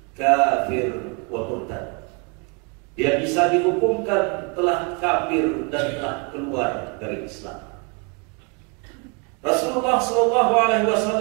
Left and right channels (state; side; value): quieter; left; 32.6 dB